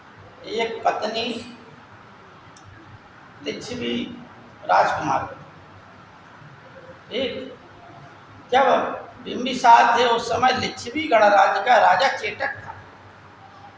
एक पत्नी लिच्छवी राजकुमार, ठीक। जब बिंबिसार थे उस समय लिच्छवी गणराज्य का राजा चेटक था।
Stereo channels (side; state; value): both; identical; correlation 1.00